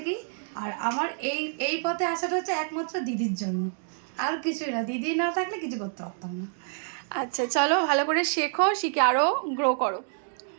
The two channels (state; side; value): silent; left; 60 dB below the other